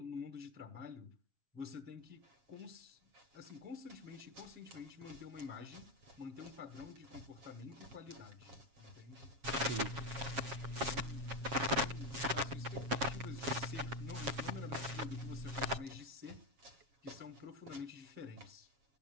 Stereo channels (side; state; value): left; late; 7.3 ms